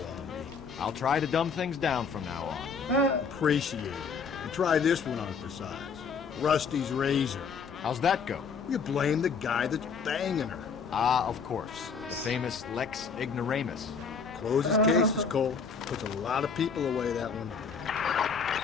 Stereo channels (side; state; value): right; quieter; 5.7 dB